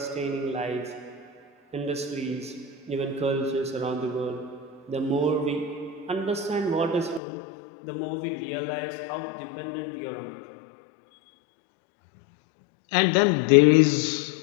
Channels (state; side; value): drops out; right; at 7.2 s